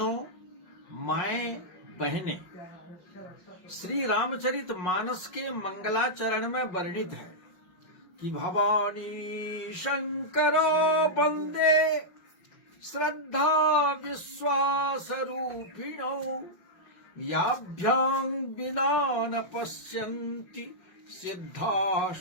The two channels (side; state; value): right; late; 5.4 ms